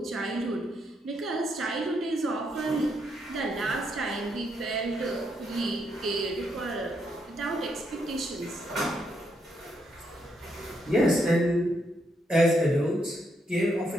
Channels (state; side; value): normal; both; correlation 0.77